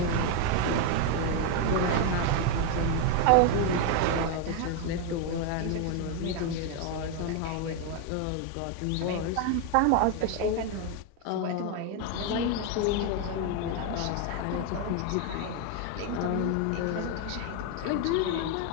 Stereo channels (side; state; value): both; different; correlation 0.01